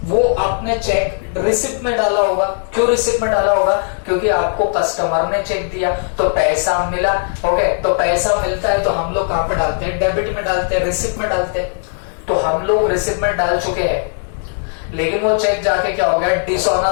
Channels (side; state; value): right; silent; digital silence